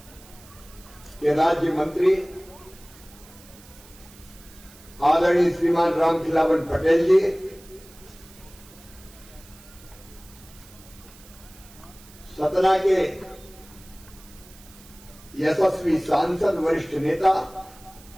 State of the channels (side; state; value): right; noise; hiss, 22 dB below the sound